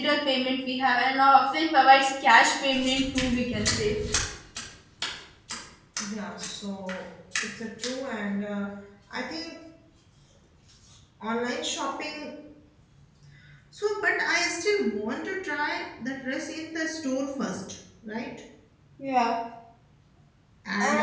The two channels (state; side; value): identical; both; correlation 1.00